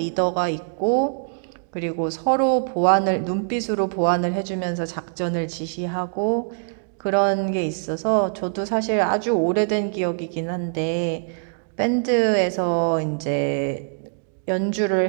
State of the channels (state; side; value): silent; left; 63 dB below the other